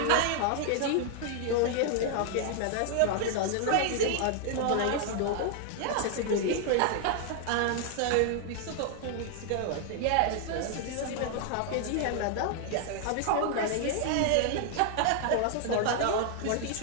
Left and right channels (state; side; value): different; both; correlation 0.00